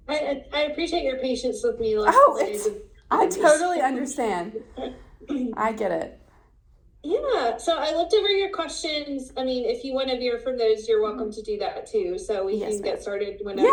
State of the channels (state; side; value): identical; both; correlation 1.00